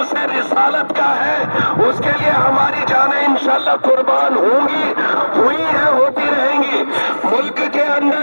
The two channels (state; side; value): inverted; both; correlation -1.00